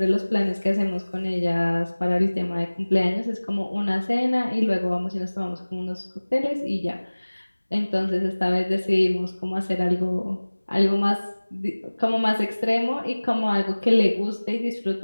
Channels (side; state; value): both; inverted; correlation -1.00